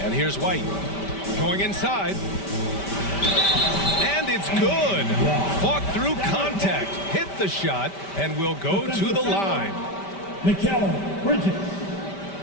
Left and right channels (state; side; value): late; right; 5.1 ms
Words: And here's White. Going inside. And it's good. Fought through contact. Hit the shot and will go to the line. Mikal Bridges.